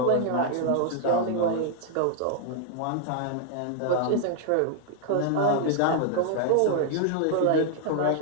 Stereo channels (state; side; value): different; both; correlation 0.00